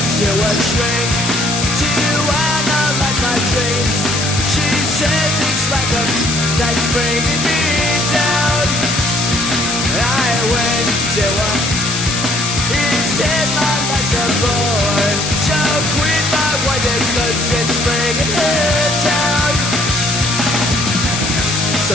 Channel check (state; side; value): noise; left; hiss, 3 dB below the sound